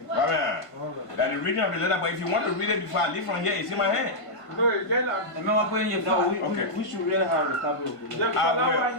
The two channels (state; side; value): late; right; 1.5 ms